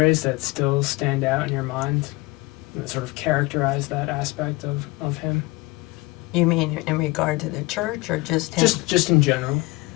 that still stand out in your mind that sort of characterize that aspect of him? You mean in regard to the church or just him? Just in general.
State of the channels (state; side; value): quieter; right; 22.6 dB